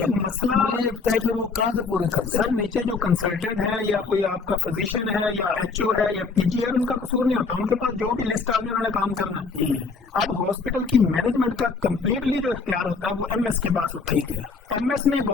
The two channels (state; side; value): quieter; right; 4.6 dB